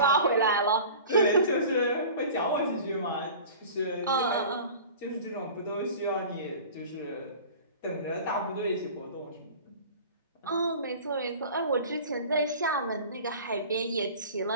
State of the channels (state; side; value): inverted; both; correlation -0.40